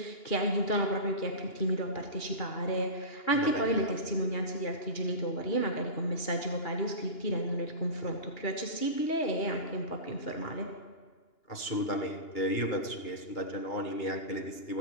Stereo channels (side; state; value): right; late; 2.9 ms